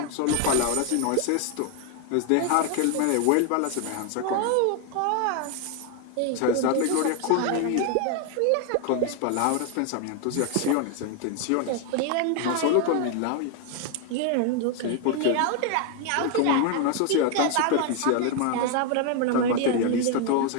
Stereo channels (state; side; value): different; both; correlation 0.01